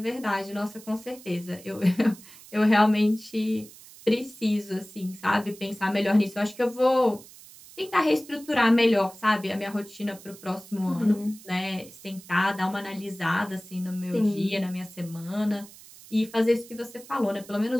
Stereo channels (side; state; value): right; noise; hiss, 20 dB below the sound